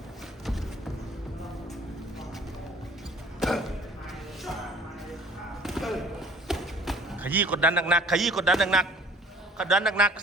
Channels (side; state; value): both; normal; correlation 0.51